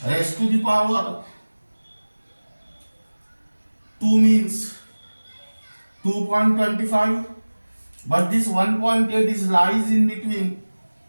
raised to the power 2 means 2.25, but this 1.8 is lies in between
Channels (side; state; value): both; inverted; correlation -1.00